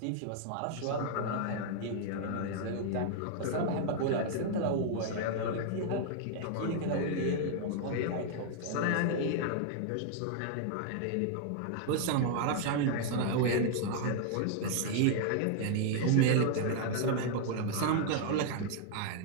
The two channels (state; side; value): different; both; correlation -0.01